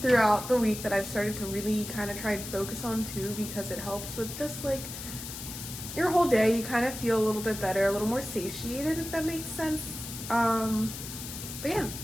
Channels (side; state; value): left; noise; hiss, 9 dB below the sound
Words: throughout the week that I've started to really kind of try and focus on too, because it helps with just like your whole day. You kind of feel a little bit better, a little more satiated, if that makes sense. But yeah,